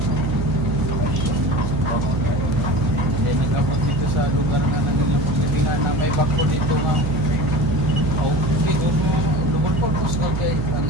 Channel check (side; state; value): right; noise; hum, 1 dB below the sound